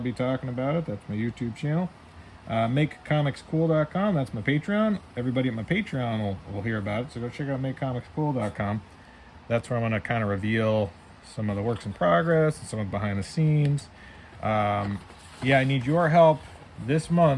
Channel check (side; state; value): both; identical; correlation 1.00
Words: talking about it. That's my YouTube channel. MakeComicsCool.com. That's my Patreon. Everybody at my Patreon will hear about it, so go check out MakeComicsCool.com. That's where I'm going to kind of reveal some of the works in progress and some of the behind the scenes. Yeah, I need your help this